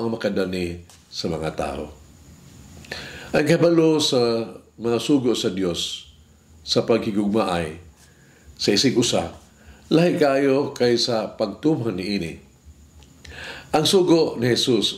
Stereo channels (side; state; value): both; identical; correlation 1.00